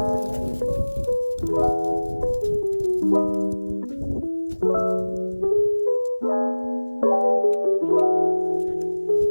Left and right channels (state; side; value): inverted; both; correlation -1.00